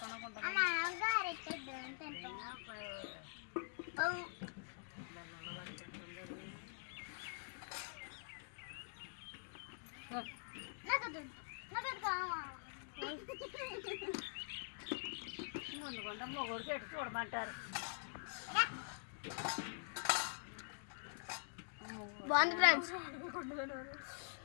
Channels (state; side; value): silent; right; digital silence